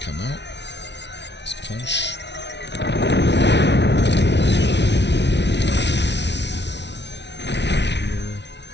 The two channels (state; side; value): late; right; 0.50 ms